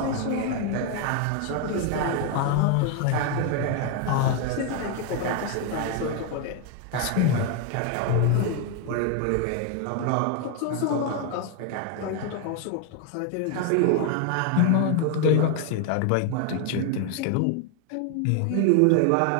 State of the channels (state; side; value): different; both; correlation 0.01